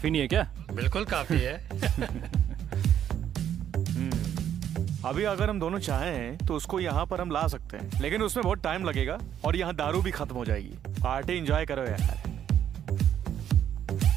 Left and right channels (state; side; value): quieter; left; 9.9 dB